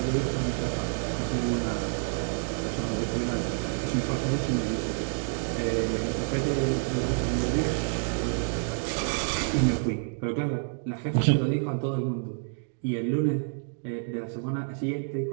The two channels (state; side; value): silent; left; digital silence